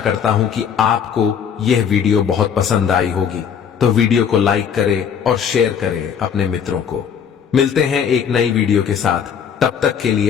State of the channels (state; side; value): quieter; right; 7.6 dB